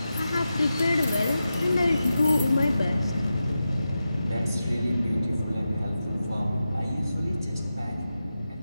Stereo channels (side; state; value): both; inverted; correlation -0.91